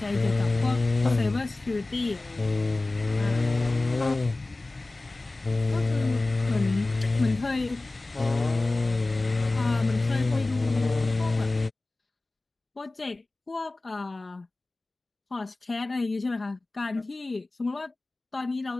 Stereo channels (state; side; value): quieter; right; 3.1 dB